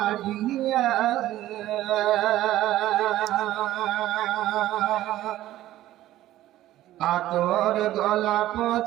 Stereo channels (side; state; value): left; quieter; 14.4 dB